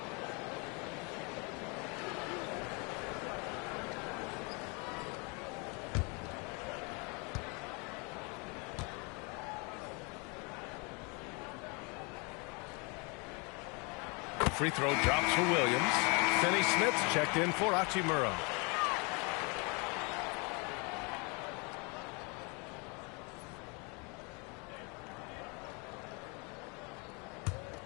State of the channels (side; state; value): right; quieter; 31.5 dB